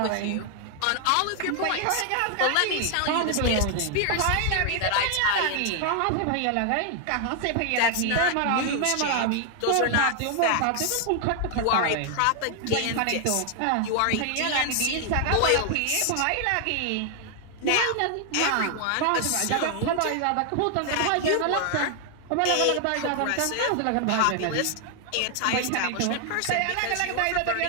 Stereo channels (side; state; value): both; different; correlation 0.00